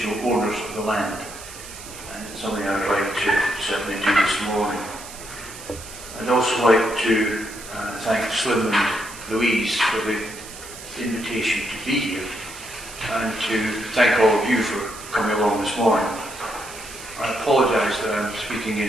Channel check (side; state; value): right; noise; hiss, 14 dB below the sound